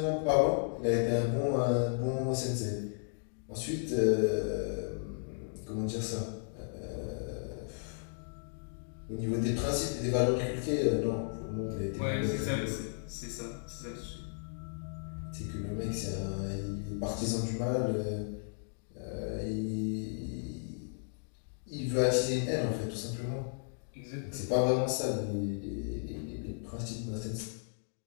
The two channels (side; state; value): right; silent; digital silence